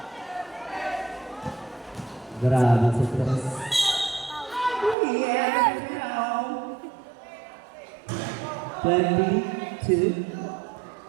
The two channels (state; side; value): drops out; left; at 5.0 s